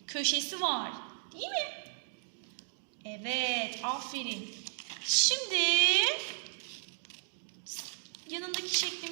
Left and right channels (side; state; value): left; silent; digital silence